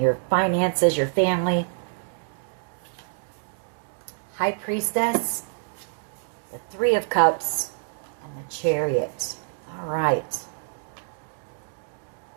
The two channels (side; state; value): left; silent; digital silence